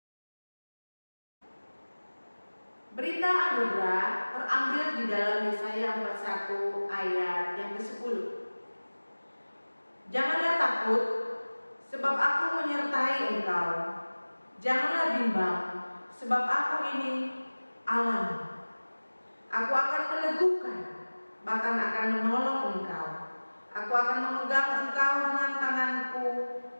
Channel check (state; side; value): inverted; both; correlation -1.00